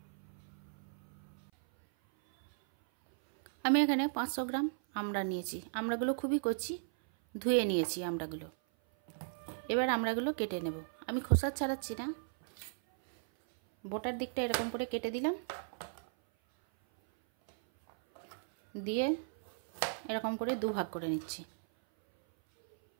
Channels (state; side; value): silent; left; 54 dB below the other